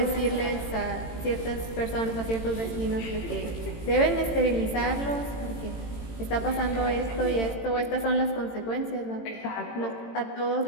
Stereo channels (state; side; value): late; right; 18 ms